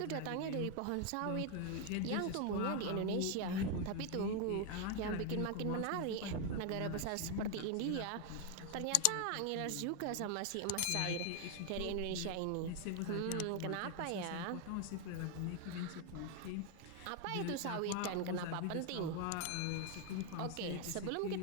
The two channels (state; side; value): different; both; correlation 0.01